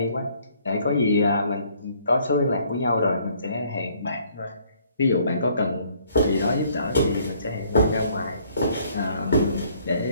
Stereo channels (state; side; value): inverted; both; correlation -0.63